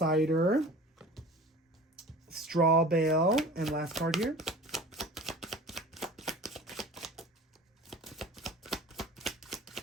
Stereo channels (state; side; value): normal; both; correlation 0.40